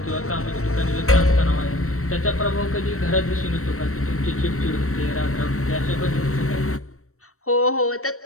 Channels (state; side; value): late; right; 0.63 ms